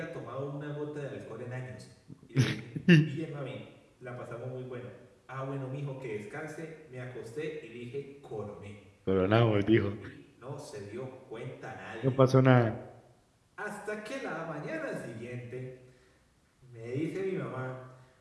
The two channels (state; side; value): identical; both; correlation 1.00